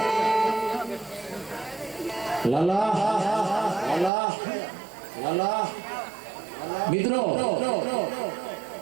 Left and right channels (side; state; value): left; drops out; at 4.1 s